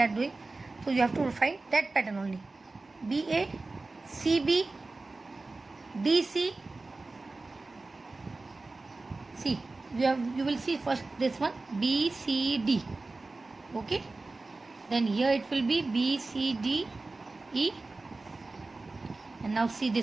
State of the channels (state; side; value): quieter; left; 3.4 dB